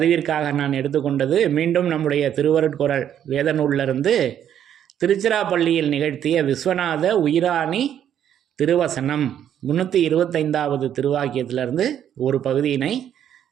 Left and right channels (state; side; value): quieter; left; 9.9 dB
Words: நான் எடுத்துக்கொண்டது மீண்டும் நம்முடைய திருவருட்குரல் வேத நூலிலிருந்து திருச்சிராப்பள்ளியில் நிகழ்த்திய விஸ்வநாத உயிராணி திருவசனம் 325வது திருவாக்கியத்திலிருந்து ஒரு பகுதியினை